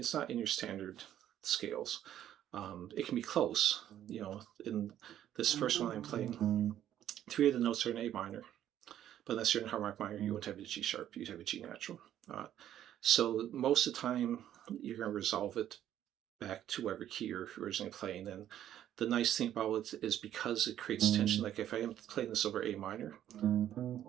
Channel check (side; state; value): left; quieter; 11.3 dB